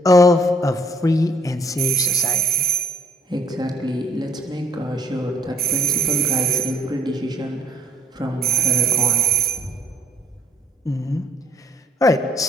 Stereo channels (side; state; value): both; normal; correlation 0.62